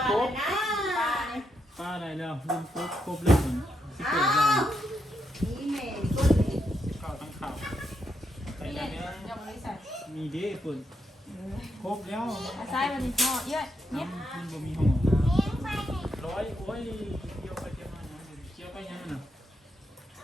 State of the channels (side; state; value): both; normal; correlation 0.81